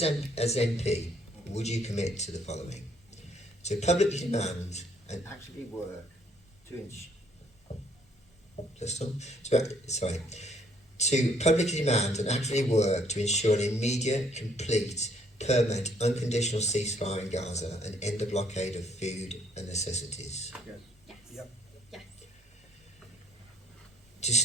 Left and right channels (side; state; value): both; normal; correlation 0.66